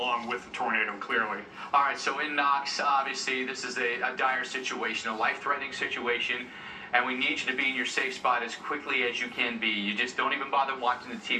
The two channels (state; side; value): identical; both; correlation 1.00